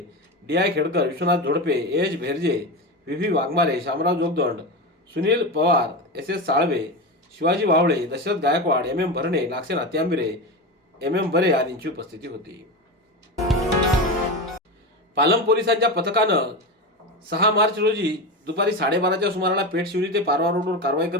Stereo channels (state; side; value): normal; both; correlation 0.20